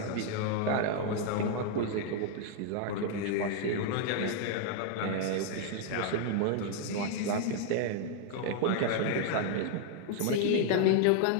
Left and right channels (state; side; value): different; both; correlation 0.00